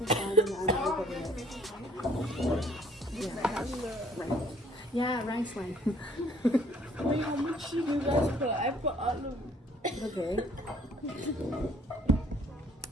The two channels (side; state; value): both; normal; correlation 0.60